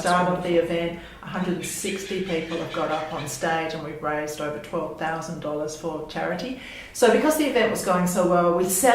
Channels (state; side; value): identical; both; correlation 1.00